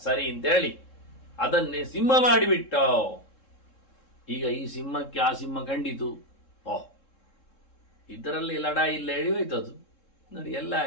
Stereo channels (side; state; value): right; late; 3.7 ms